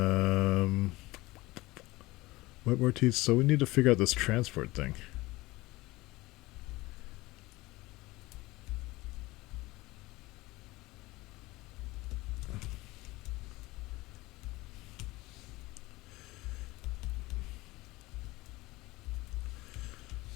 WebRTC. So we need to figure out this transport thing.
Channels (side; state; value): right; quieter; 20.4 dB